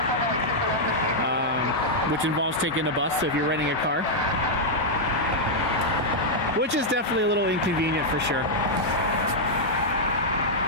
which involves taking a bus, so if you're renting a car, which is definitely a little inconvenient for sure.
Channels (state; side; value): normal; both; correlation -0.04